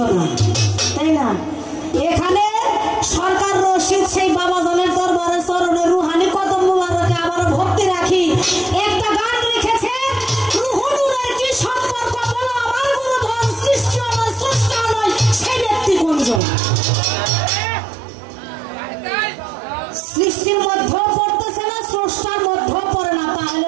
তাই না? এখানে সরকার রশিদ সেই বাবাজনের দরবারে চরণে রুহানি কদম মুবারকে আবার ভক্তি রাখি একটা গান লিখেছে, রুহু নূরের কি সম্পর্ক বলো আমার গুণধন, সৃষ্টি নয় স্রষ্টা নয় সেই ব্যক্তি কোনজন। সৃষ্টির মধ্যেও পড়তেছে না, স্রষ্টার মধ্যেও পড়ে না, তাহলে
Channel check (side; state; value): left; drops out; at 16.4 s